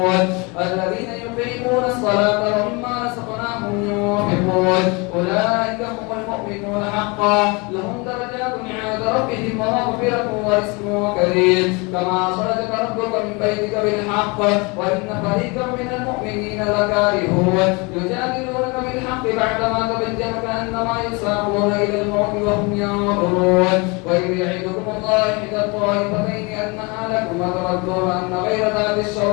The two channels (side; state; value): right; quieter; 28.4 dB